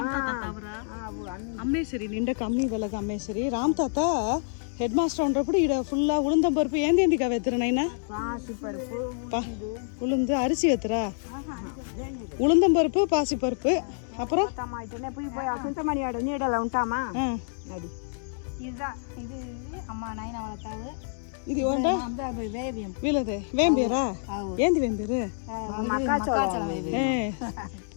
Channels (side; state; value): right; silent; digital silence